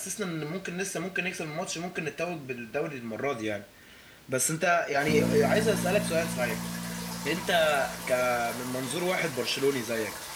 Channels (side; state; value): both; identical; correlation 1.00